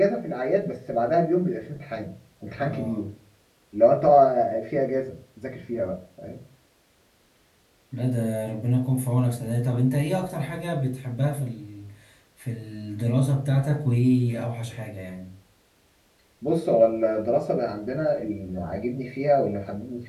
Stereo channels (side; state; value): both; identical; correlation 1.00